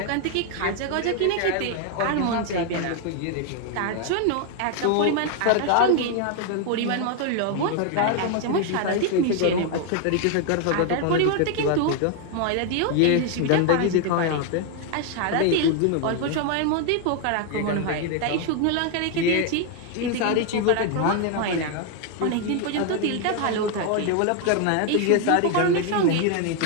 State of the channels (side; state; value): both; different; correlation 0.00